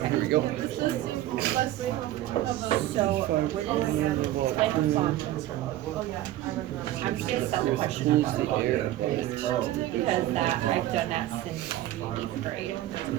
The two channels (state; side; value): quieter; left; 14.4 dB